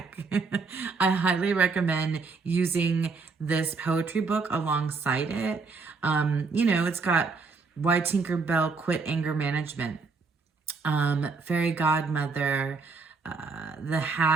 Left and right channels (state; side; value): quieter; left; 4.5 dB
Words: I highly recommend using this poetry book alongside it. It's got Why Tinker Bell Quit Anger Management, Fairy Godmother, The